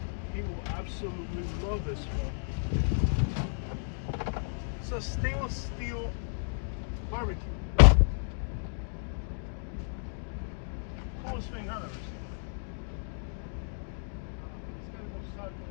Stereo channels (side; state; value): right; silent; digital silence